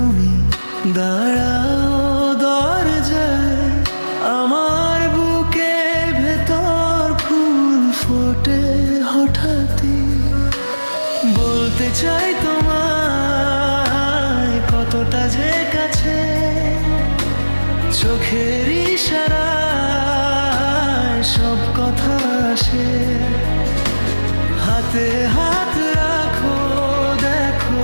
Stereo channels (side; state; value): both; inverted; correlation -1.00